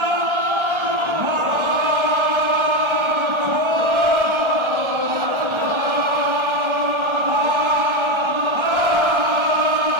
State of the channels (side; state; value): left; late; 1.3 ms